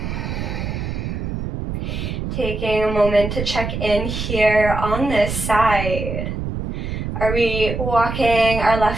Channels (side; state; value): right; noise; rumble, 4 dB below the sound